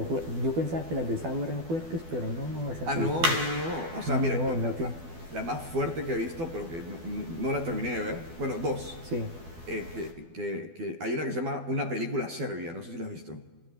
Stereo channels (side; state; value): left; late; 12 ms